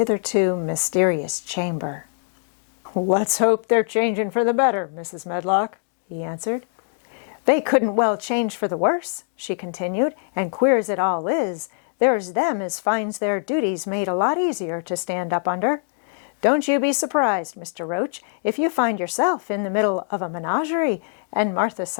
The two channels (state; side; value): silent; right; digital silence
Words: mysterious chamber. "Let's hope they're changing for the better, Mrs. Medlock," he answered. "They couldn't well change for the worse," she continued, "and queer as it all is, there's them as finds their duties made a lot easier to stand up under. Don't you be surprised, Mr. Roach, if you find yourself in the middle of a menagerie, and Martha